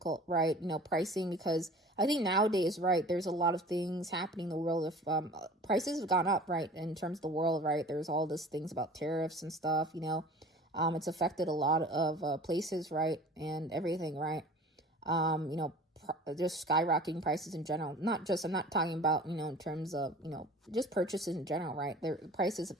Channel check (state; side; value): normal; both; correlation 0.43